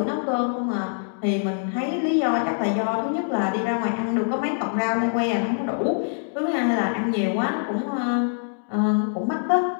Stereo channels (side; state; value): right; silent; digital silence